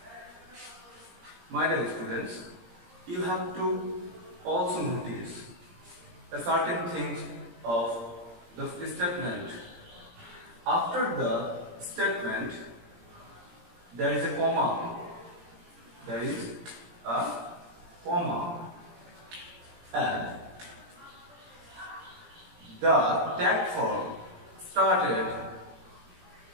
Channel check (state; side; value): late; left; 17 ms